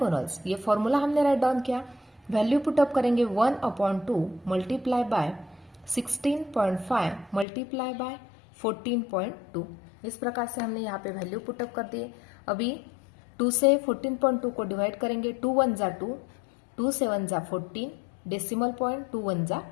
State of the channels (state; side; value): drops out; right; at 7.5 s